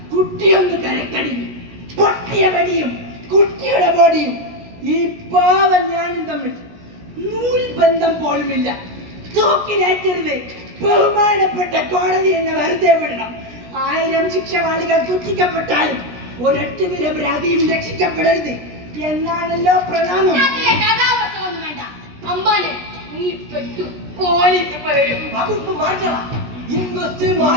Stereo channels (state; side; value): late; left; 16 ms